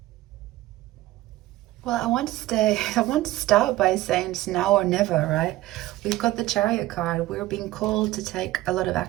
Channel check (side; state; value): left; quieter; 16.7 dB